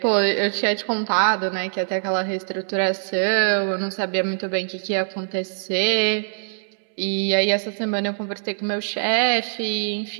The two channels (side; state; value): left; silent; 63 dB below the other